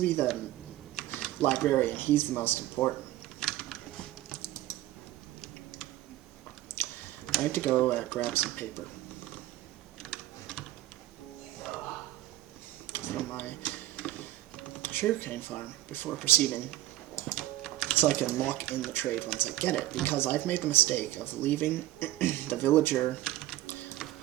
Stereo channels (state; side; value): quieter; left; 15.5 dB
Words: be the librarian. He's the most important. I have to go grab some paper from my sugarcane farm before proceeding, so I can lock in the trade once I get it, because I've made the mistake of leaving the villager